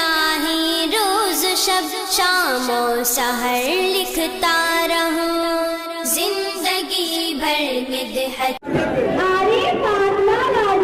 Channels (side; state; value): both; identical; correlation 1.00